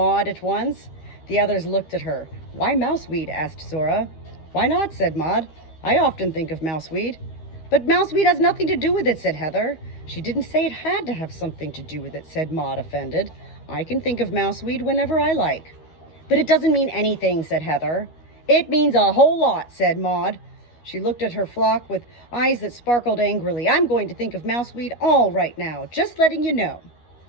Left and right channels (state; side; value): late; right; 13 ms